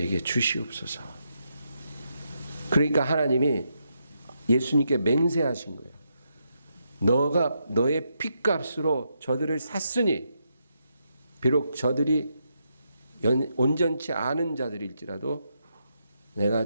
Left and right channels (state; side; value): inverted; both; correlation -0.81